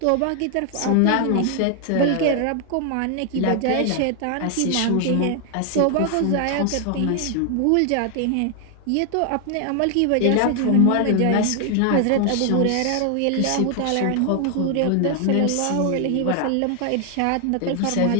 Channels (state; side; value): different; both; correlation 0.00